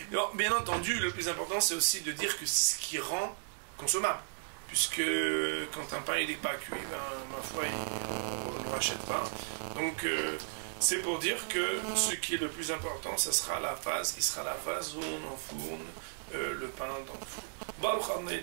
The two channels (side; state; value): left; silent; 55 dB below the other